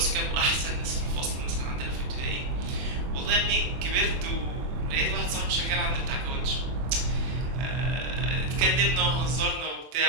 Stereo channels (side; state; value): left; late; 24 ms